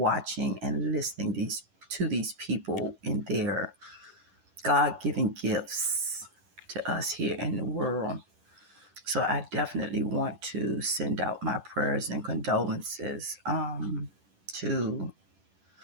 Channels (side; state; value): left; late; 10 ms